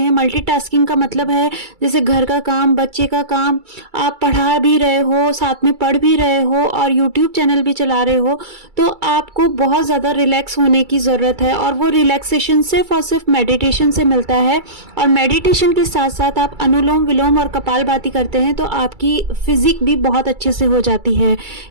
मल्टीटास्किंग का मतलब है जैसे घर का काम, बच्चे का काम, आप पढ़ा भी रहे हो, साथ में पढ़ भी रहे हो और यूट्यूब चैनल भी चला रहे हो, तो आपको बहुत ज़्यादा रिलैक्स होने की ज़रूरत है। और वो रिलैक्सेशन सिर्फ और सिर्फ मेडिटेशन से मिलता है। और मेडिटेशन के साथ साथ आप अनुलोम विलोम और कपालभाति करते हैं तो आपकी फिजिक भी बहुत अच्छे से हो जाती है।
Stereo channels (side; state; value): left; late; 2.3 ms